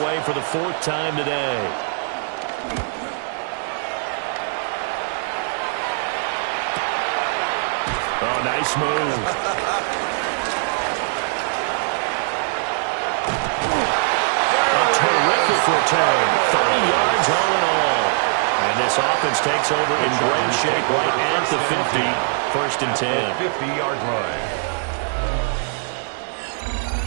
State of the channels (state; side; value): silent; left; 65 dB below the other